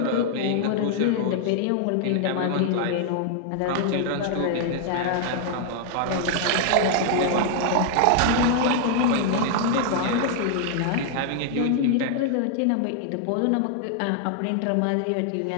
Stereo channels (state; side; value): different; both; correlation 0.00